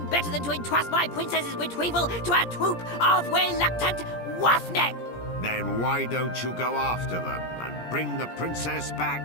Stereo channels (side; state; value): right; late; 17 ms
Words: better than to entrust my princess's retrieval to a troop of reluctant roughneck. Then why don't you go after them and bring the princess